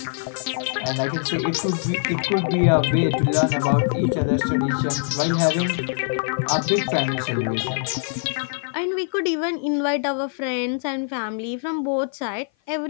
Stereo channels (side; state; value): right; silent; 55 dB below the other